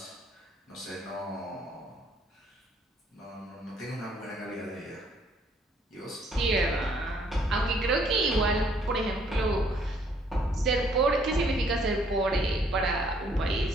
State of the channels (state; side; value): normal; both; correlation 0.65